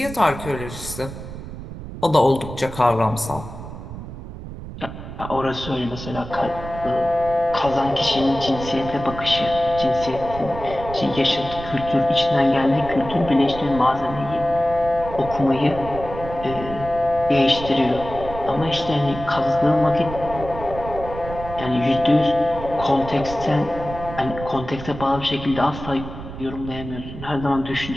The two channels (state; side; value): noise; right; rumble, 11 dB below the sound